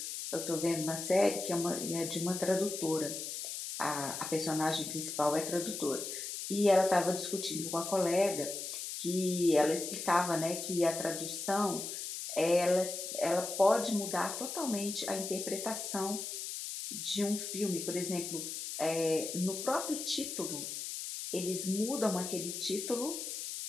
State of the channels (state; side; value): noise; left; hiss, 6 dB below the sound